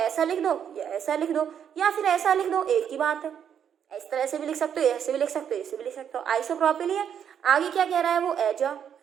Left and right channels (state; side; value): quieter; left; 8.5 dB